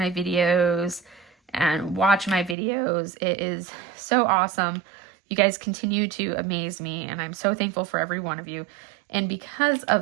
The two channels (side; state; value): left; drops out; at 2.6 s